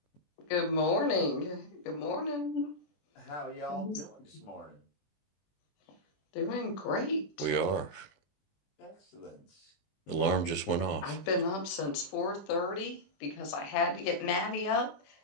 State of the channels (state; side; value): late; right; 21 ms